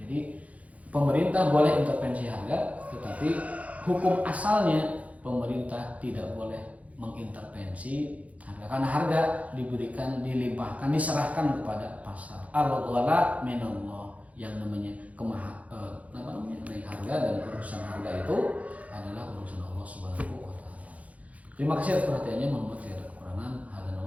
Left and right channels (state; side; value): late; left; 0.068 ms